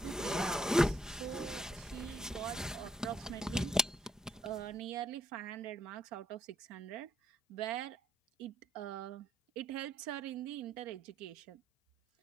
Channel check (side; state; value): both; normal; correlation 0.70